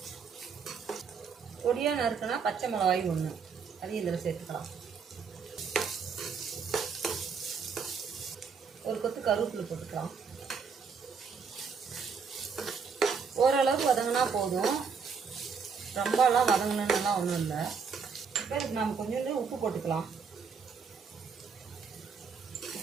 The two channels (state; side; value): quieter; left; 5.8 dB